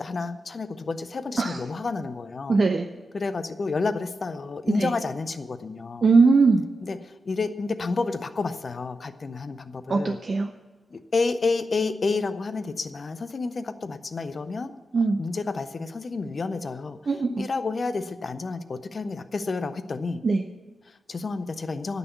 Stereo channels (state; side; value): normal; both; correlation 0.88